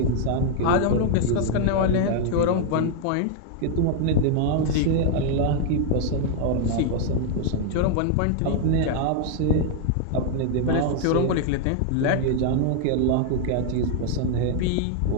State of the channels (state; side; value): different; both; correlation 0.00